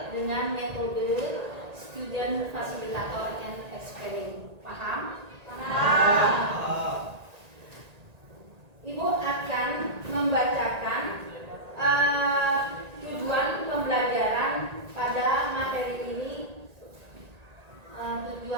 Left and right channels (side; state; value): left; late; 1.9 ms